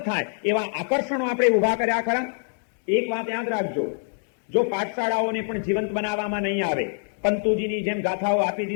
થાય એવા આકર્ષણો આપણે ઉભા કર્યા ખરા? એક વાત યાદ રાખજો, જો પાઠશાળાઓને પણ જીવંત બનાવવામાં નહીં આવે, પંતુજીની જેમ ગાથાઓ આપી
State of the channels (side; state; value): right; silent; digital silence